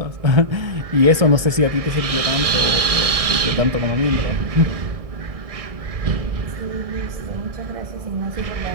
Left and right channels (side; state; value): left; late; 1.6 ms